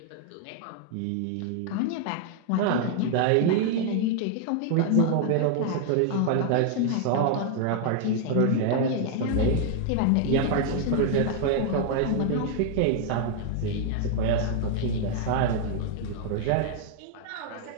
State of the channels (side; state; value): both; different; correlation 0.00